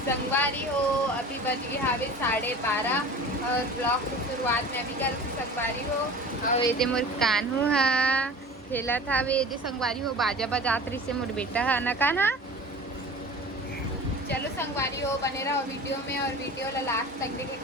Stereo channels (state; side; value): normal; both; correlation 0.38